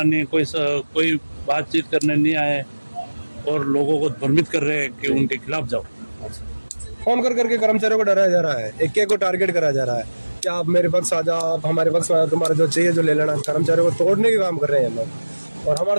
नहीं, कोई बातचीत करने नहीं आए और लोगों को भ्रमित कर रहे हैं कि उनके खिलाफ जाओ। फोन कर करके कर्मचारियों को डराया जा रहा है, एक को टारगेट करा जा रहा है कि आप मेरे पक्ष आ जाओ, आप हमारे पक्ष में आ जाओ, तुम्हारा जो चाहिए जो ले लेना। कर्मचारियों को तोड़ने के काम कर रहे हैं लोग। और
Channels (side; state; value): both; inverted; correlation -1.00